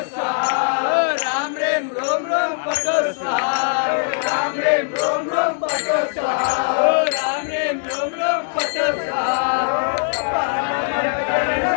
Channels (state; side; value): silent; right; digital silence